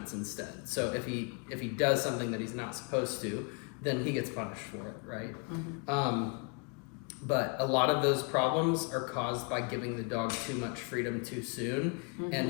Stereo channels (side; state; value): right; quieter; 35.1 dB